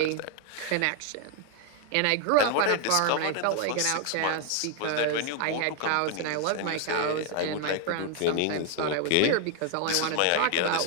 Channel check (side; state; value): both; different; correlation 0.00